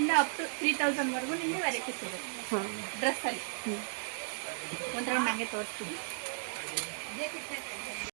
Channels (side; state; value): left; silent; digital silence